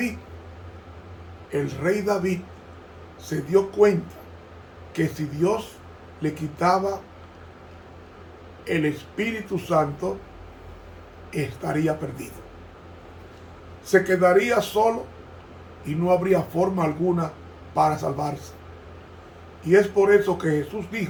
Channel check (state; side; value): identical; both; correlation 1.00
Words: El rey David se dio cuenta que si Dios le quitaba el Espíritu Santo, estaría perdido. Se quedaría solo y no habría forma alguna para salvarse. Y es por eso que Jesús